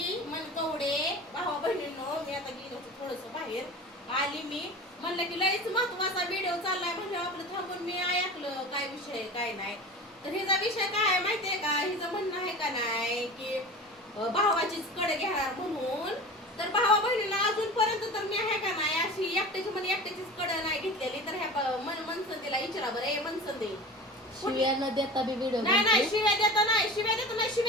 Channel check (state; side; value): normal; both; correlation 0.34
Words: मन कवडे भावा बहिणींनो. मी आता गेलो थोडस बाहेर आली. मी म्हणलं की लयच महत्वाचा व्हिडिओ चाललाय म्हणजे आपलं थांबून मी ऐकलं काय विषय काय नाही. तर हिचा विषय काय आहे माहितीये का? हिचं म्हणणं आहे का नाही की भावाचीच कडे घेणार म्हणून. तर भावा बहिणीला अजूनपर्यंत तर मी आहे का नाही अशी एकट्याची म्हणे एकट्याचीच कडे नाही घेतलेली. तर ह्या मनसंदेला विचारा बरं. ए मनसंदे शिव्या न देता बी व्हिडिओ नाही शिव्या देता नाही